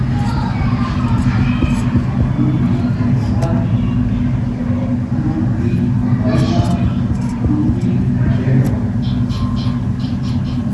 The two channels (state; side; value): identical; both; correlation 1.00